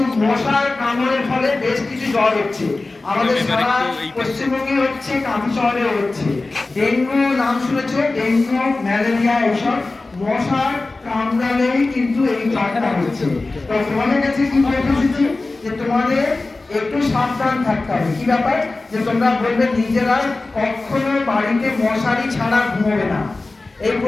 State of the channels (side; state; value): right; quieter; 3.3 dB